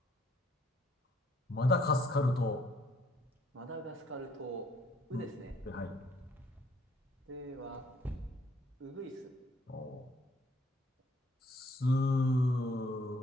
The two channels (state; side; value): normal; both; correlation 0.65